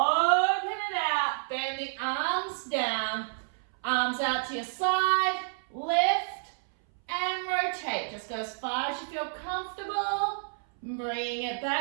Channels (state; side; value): silent; left; 58 dB below the other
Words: it out, bend the arms down, arms out to your side, lift and rotate. Just go as far as you feel comfortable. Bring it